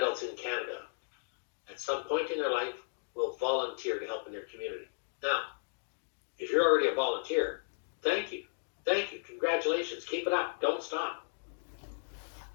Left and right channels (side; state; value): right; silent; digital silence